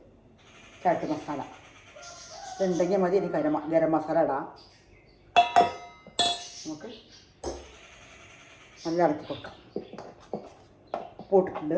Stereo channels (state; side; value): identical; both; correlation 1.00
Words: ചാട്ട് മസാല ഇതുണ്ടെങ്കിൽ മതി. ഇനി ഗരം മസാല ഇടാം. നമുക്ക് നല്ല ഇളക്കി കൊടുക്കാം. ഉപ്പിട്ടിട്ടുണ്ട്.